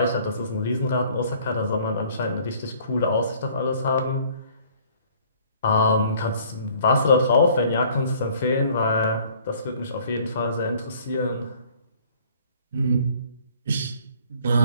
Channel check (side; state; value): both; inverted; correlation -0.56